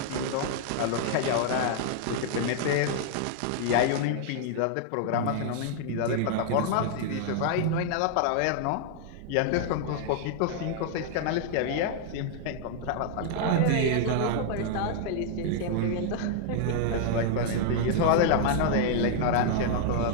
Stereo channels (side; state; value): both; different; correlation -0.01